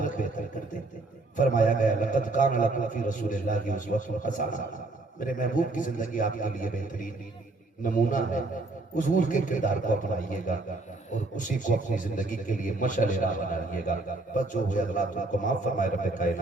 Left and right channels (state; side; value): quieter; left; 3.1 dB